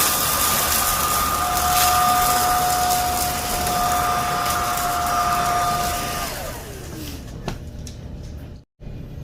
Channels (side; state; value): both; identical; correlation 1.00